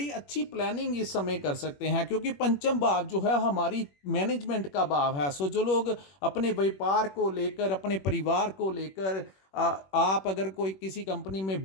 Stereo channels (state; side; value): late; right; 21 ms